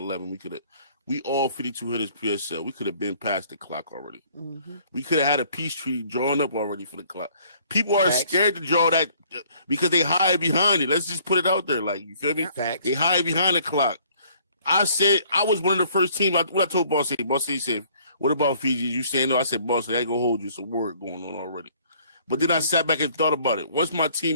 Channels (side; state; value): both; inverted; correlation -0.60